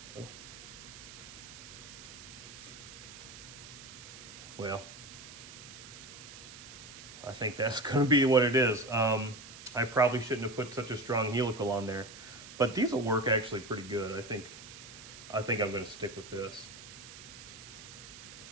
well, I think that's going to be what it is. I probably shouldn't have put such a strong helical on there, but these will work actually pretty good. I think I'm going to stick with this.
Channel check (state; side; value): noise; right; hiss, 15 dB below the sound